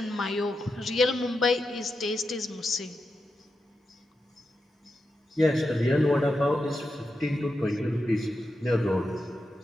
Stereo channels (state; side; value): normal; both; correlation 0.88